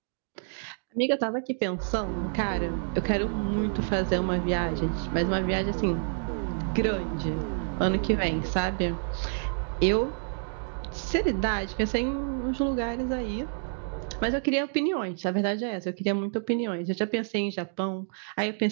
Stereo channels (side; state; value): left; silent; digital silence